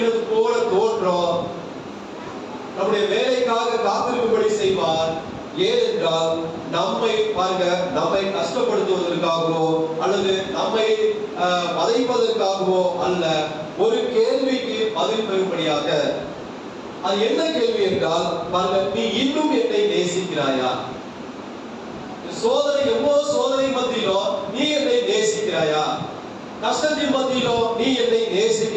போல தோற்றம். நம்முடைய வேலைக்காக காத்திருக்கும்படி செய்வார். ஏனென்றால் நம்மை பாருங்க, நம்மை கஷ்டப்படுத்துவதற்காகவோ அல்லது நம்மை வதைப்பதற்காகவோ அல்ல, ஒரு கேள்விக்கு பதில் பெறும்படியாக. அது என்ன கேள்வி என்றால், பாருங்க, நீ இன்னும் என்னை நேசிக்கிறாயா? சோதனை, எவ்வளவு சோதனை மத்தியிலோ நீ என்னை நேசிக்கிறாயா? கஷ்டத்தின் மத்தியிலோ நீ என்னை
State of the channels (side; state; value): both; identical; correlation 1.00